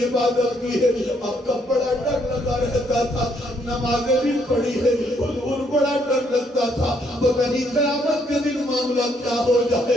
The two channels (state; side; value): normal; both; correlation 0.71